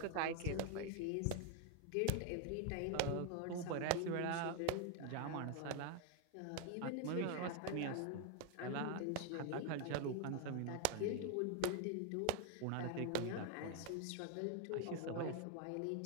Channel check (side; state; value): both; different; correlation 0.01